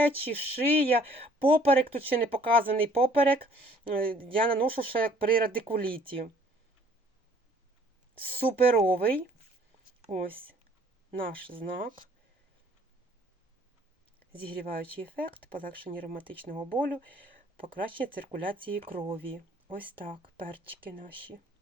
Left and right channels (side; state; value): both; normal; correlation 0.57